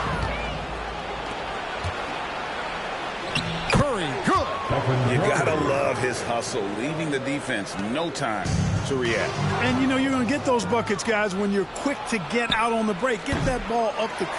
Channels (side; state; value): both; identical; correlation 1.00